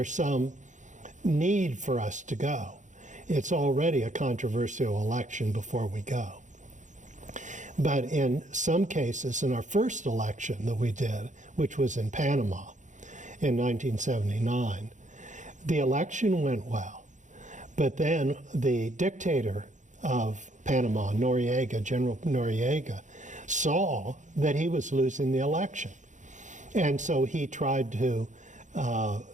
some need for us to go. It's already a controversial election before we go. But in some cases, in our first election that we did, which was in Panama in 1979, the election went well. But then the dictator of Panama, Noriega, General Noriega, saw that he was losing the election. And so he tried to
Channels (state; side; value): late; left; 0.36 ms